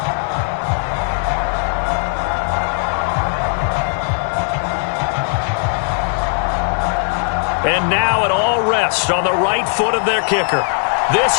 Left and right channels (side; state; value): right; silent; 60 dB below the other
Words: And now it all rests on the right foot of their kicker.